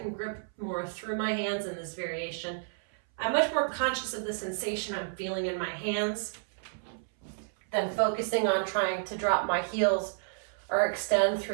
grip more through my hands in this variation. I'm much more conscious of the sensation I'm feeling in my hands than focusing on trying to drop my heels or extend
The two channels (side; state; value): left; silent; 57 dB below the other